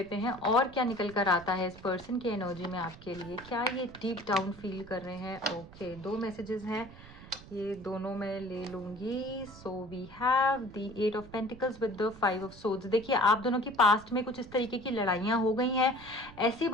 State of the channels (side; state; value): right; noise; rumble, 18 dB below the sound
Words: हैं और क्या निकल कर आता है इस पर्सन की एनर्जी में आपके लिए। क्या ये डीप डाउन फील कर रहे हैं? ओके, 2 मैसेजेस हैं, ये दोनों मैं ले लूंगी। So we have the 8 of pentacles with the 5 of swords. देखिए आप दोनों की पास्ट में कुछ इस तरीके की लड़ाइयाँ हो गई हैं, ऐसी